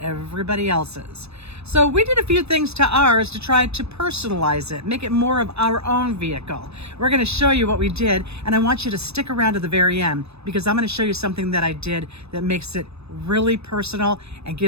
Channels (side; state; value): left; late; 0.79 ms